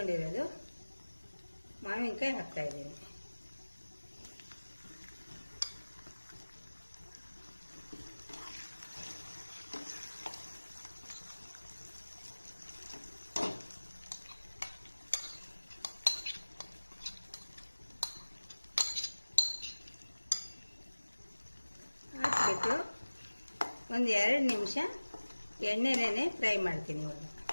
ಮಾವಿನಕಾಯಿ ಹಾಕ್ತಾ ಇದ್ದೀನಿ. ಹಾಕ್ಬಿಟ್ಟು ಒಂದು 2 ನಿಮಿಷ ಎಣ್ಣೆನೇ ಫ್ರೈ ಮಾಡ್ತೀನಿ. ಇವಾಗ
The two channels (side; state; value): both; inverted; correlation -1.00